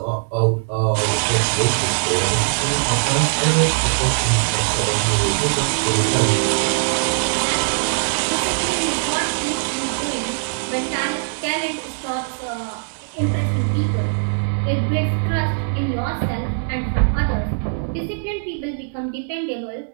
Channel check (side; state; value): left; silent; digital silence